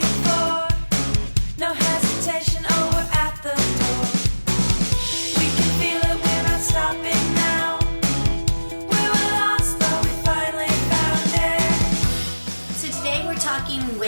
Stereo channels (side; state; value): both; inverted; correlation -1.00